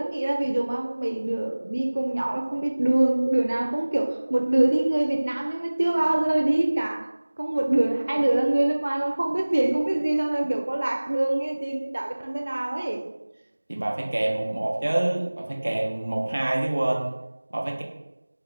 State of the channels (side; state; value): both; inverted; correlation -1.00